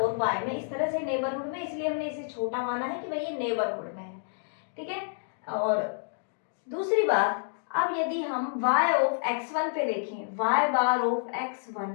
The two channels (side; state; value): right; silent; digital silence